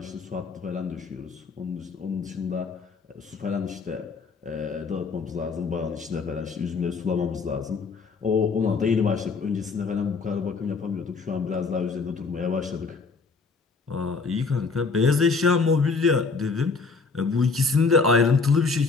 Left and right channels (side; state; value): right; quieter; 4.6 dB